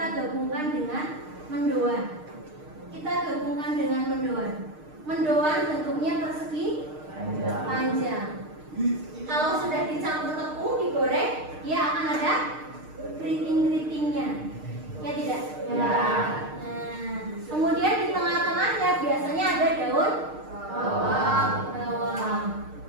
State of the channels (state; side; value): late; left; 6.5 ms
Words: gabungkan dengan mendoan. Mendoan bentuknya persegi panjang. Kalau sudah dicampur tepung, digoreng, dia akan ada keriting-keritingnya. Ya tidak? Ya. Nah, kemudian di tengah-tengahnya biasanya ada daun bawang.